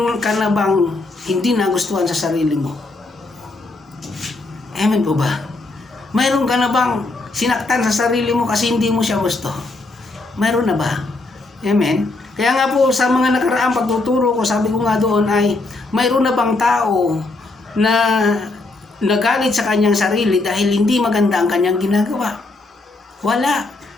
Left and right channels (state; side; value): quieter; right; 3.2 dB